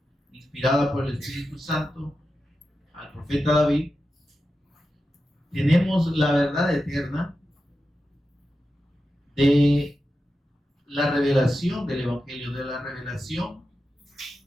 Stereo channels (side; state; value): both; normal; correlation 0.91